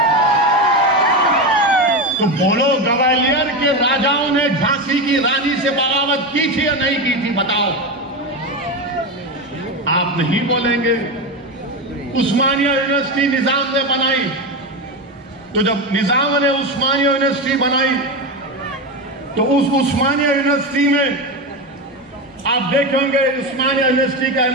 तो बोलो, ग्वालियर के राजाओं ने झांसी की रानी से बगावत की थी या नहीं की थी? बताओ। आप नहीं बोलेंगे। उस्मानिया यूनिवर्सिटी निजाम ने बनाई, तो जब निजाम ने उस्मानिया यूनिवर्सिटी बनाई तो उस उस्मानिया यूनिवर्सिटी में आप देखेंगे उस्मानिया यूनिवर्सिटी का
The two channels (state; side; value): normal; both; correlation 0.17